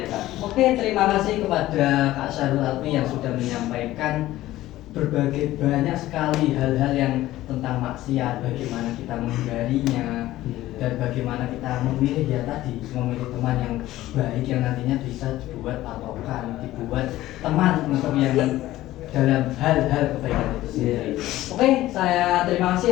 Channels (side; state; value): right; quieter; 15.6 dB